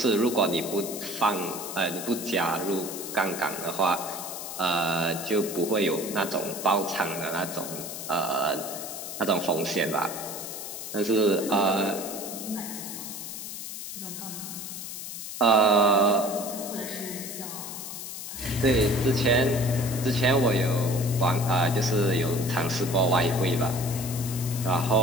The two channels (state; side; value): noise; left; hiss, 8 dB below the sound